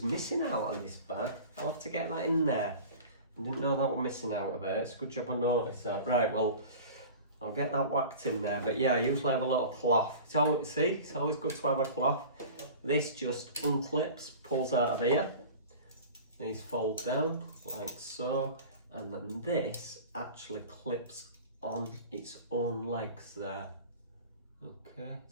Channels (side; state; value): both; inverted; correlation -0.38